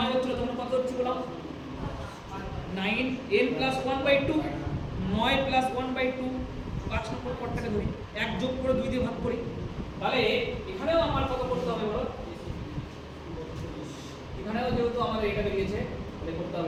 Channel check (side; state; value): both; identical; correlation 1.00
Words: হচ্ছিল তখন কত হচ্ছিল বলো 9 n + 1/2, 9 + 1/2, 5 নম্বর পদটাকে ধরি, 1 যোগ করে 2 দিয়ে ভাগ করি। তাহলে এখানেও আমার কত করতে হবে বলো, এখানেও যেহেতু আমাদের এটা বেরিয়েছে তাহলে করতে